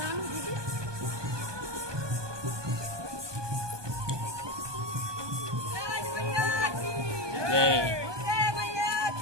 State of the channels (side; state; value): left; late; 1.2 ms